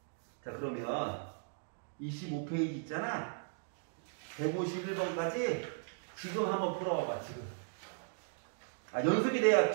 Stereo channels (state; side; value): silent; left; digital silence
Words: 자, 그러면 25페이지 있잖아? 151번까지 지금 한번 풀어봐봐, 지금. 연습이 돼야